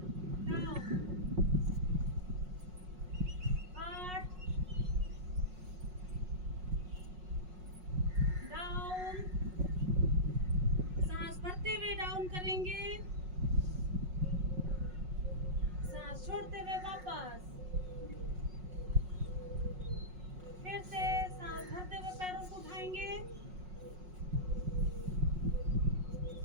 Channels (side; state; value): left; late; 5.5 ms